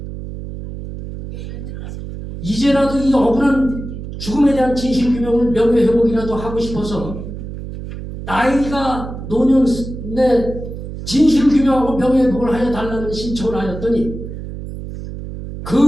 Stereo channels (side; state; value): right; noise; hum, 9 dB below the sound